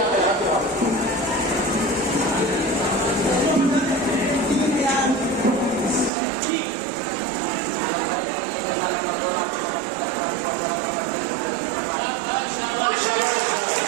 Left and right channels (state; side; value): drops out; left; at 6.1 s